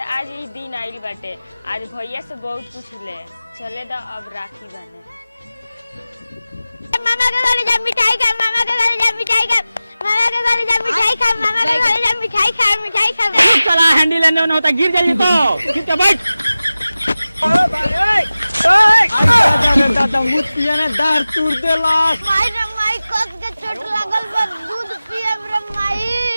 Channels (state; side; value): inverted; both; correlation -0.96